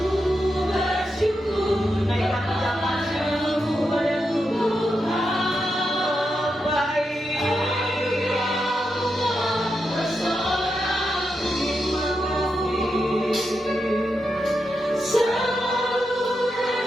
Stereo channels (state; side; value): normal; both; correlation 0.86